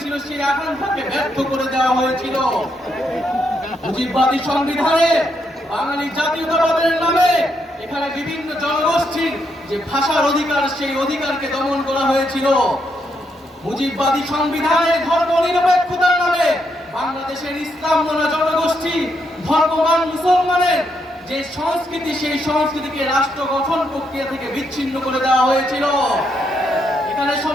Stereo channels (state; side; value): normal; both; correlation 0.78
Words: সেই আকাঙ্ক্ষাকে ব্যর্থ করে দেওয়া হয়েছিল। মুজিববাদী সংবিধানে বাঙালি জাতীয়তাবাদের নামে এখানে বিভিন্ন জনগোষ্ঠীর যে ভাষার অধিকার, সেই অধিকারকে দমন করা হয়েছিল। মুজিববাদী সংবিধানে ধর্ম নিরপেক্ষতার নামে বাংলাদেশের ইসলাম মনা জনগোষ্ঠী, ধর্মবান মুসলমানের যে সংস্কৃতি, সেই সংস্কৃতিকে রাষ্ট্র গঠন প্রক্রিয়া থেকে বিচ্ছিন্ন করে দেওয়া হয়েছিল। এখানে